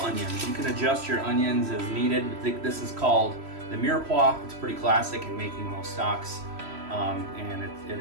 You can adjust your onions as needed. This is called the mirepoix. It's pretty classic in making most stocks, and it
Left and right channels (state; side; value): late; left; 3.0 ms